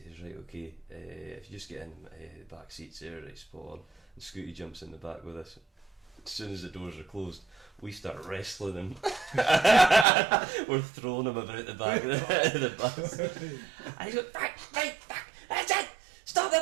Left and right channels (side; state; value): left; drops out; at 10.1 s